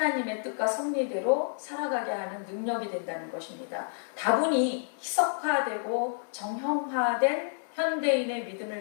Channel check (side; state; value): right; silent; digital silence